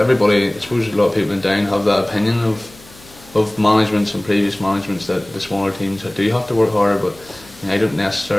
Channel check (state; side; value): noise; left; hum, 23 dB below the sound